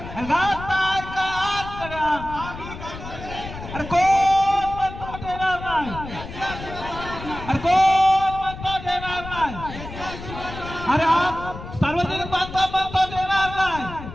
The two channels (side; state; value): left; noise; rumble, 11 dB below the sound